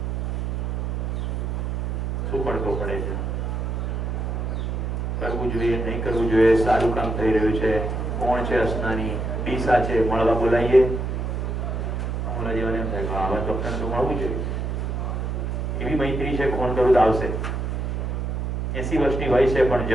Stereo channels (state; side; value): noise; right; hum, 2 dB below the sound